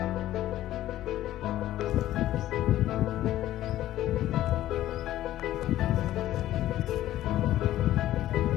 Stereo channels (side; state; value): right; quieter; 13.8 dB